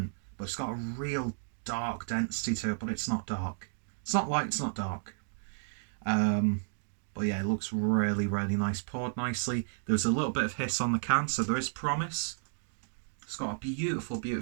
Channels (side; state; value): left; silent; digital silence